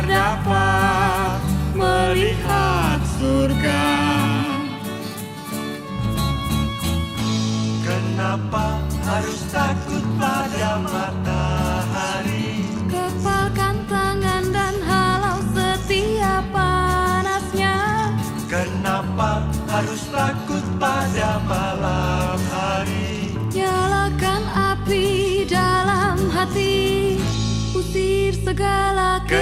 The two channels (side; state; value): both; identical; correlation 1.00